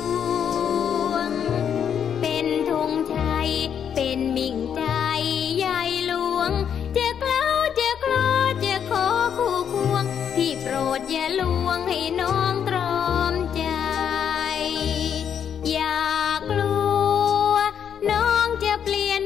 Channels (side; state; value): right; quieter; 8.3 dB